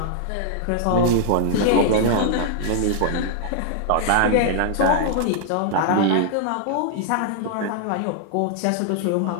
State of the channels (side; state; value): both; different; correlation -0.01